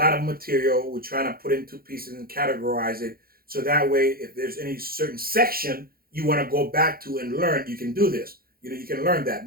of material. We're trying to put it into pieces and categorize it, so that way, if there's any certain section you want to go back to and learn, you can do this. You can learn that,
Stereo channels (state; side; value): late; left; 0.43 ms